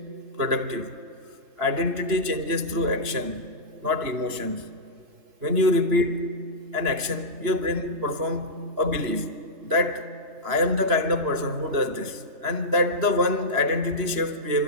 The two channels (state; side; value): late; left; 3.0 ms